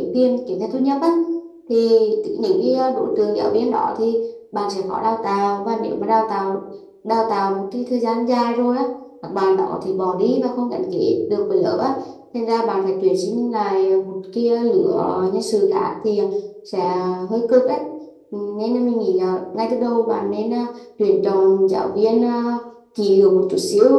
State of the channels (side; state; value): both; identical; correlation 1.00